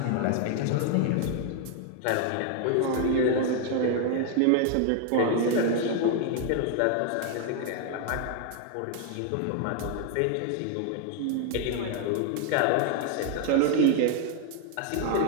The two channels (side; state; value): both; different; correlation 0.00